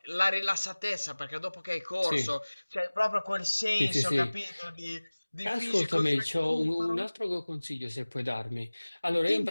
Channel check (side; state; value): both; inverted; correlation -1.00